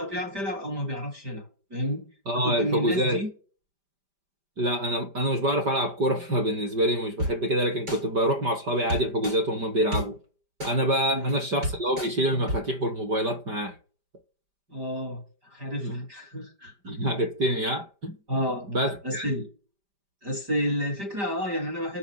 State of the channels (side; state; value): left; late; 5.0 ms